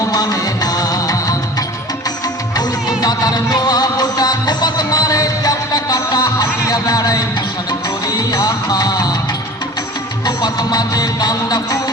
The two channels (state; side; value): normal; both; correlation 0.40